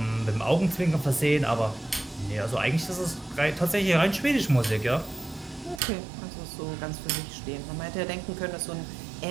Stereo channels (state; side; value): drops out; left; at 5.8 s